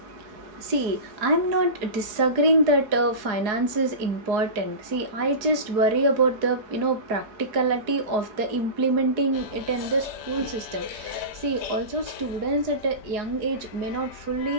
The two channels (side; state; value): left; late; 4.7 ms